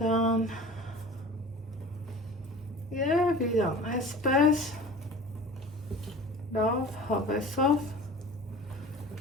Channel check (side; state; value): both; normal; correlation 0.40